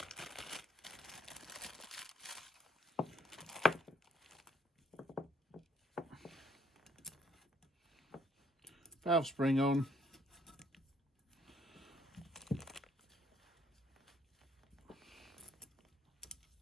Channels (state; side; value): normal; both; correlation 0.66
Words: Valve spring on.